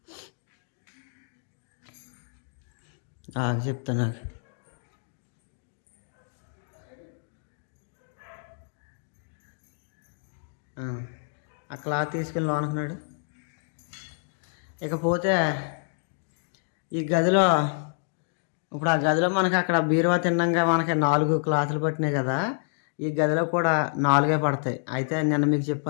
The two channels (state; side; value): silent; right; digital silence